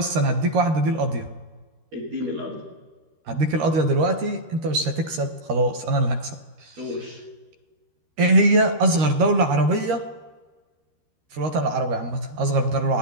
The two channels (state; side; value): late; left; 13 ms